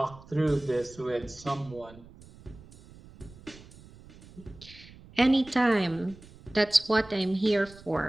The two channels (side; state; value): right; noise; rumble, 21 dB below the sound